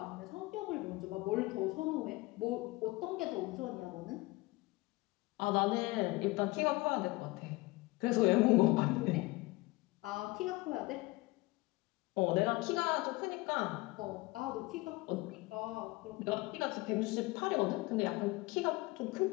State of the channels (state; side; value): quieter; right; 22.4 dB